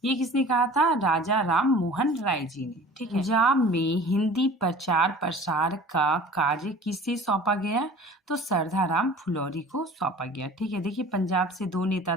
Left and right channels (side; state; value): both; normal; correlation 0.44